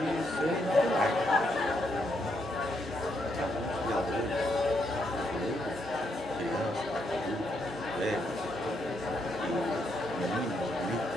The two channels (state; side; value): normal; both; correlation 0.78